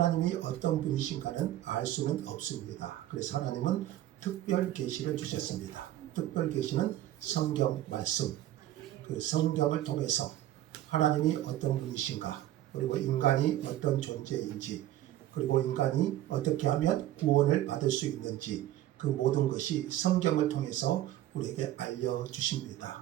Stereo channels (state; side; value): quieter; left; 13.7 dB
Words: 어떤 분이신가는 알 수는 없습니다. 그래서 하나님은 특별 계시를 주셨습니다. 특별 계시는 성경 말씀, 그 성경을 통해서 하나님이 어떤 분이신가, 그리고 인간이 어떤 존재인지, 그리고 인간이 어떻게 하면 구원을 받을 수 있는지, 그 모든 것이 성경을 통해서 우리에게